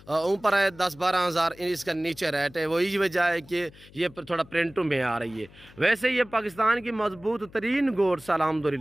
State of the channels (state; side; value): noise; left; hum, 23 dB below the sound